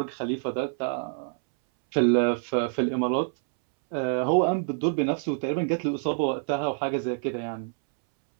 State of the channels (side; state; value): left; silent; 60 dB below the other